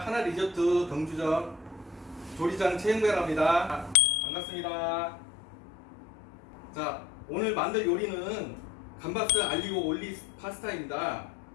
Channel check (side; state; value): right; drops out; at 4.0 s